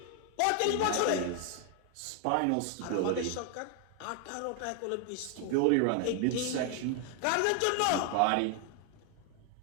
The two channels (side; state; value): both; different; correlation 0.00